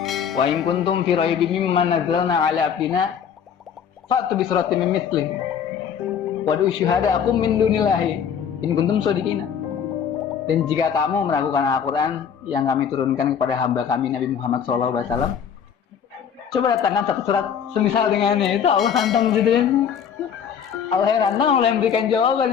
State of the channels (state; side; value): quieter; right; 7.8 dB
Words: Wa in kuntum fi raibin mimma nazzalna ala abdina fa'tu bi suratin min mithlihi wadu syuhada'akum min dunillahi in kuntum shadiqina. Dan jika kamu meragukan Al-Quran yang kami turunkan kepada hamba kami Nabi Muhammad SAW, coba datangkan satu surat semisal dengannya. Itu Allah tantang gitu kan. Allah yang tantang, Allah yang berikan